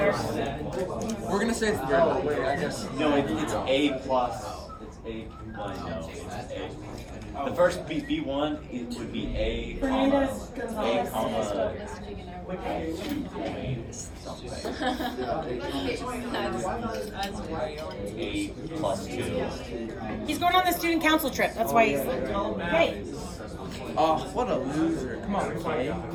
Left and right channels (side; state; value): both; identical; correlation 1.00